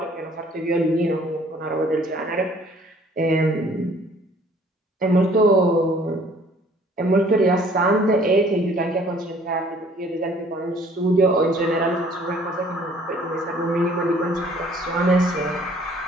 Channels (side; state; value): both; normal; correlation 0.57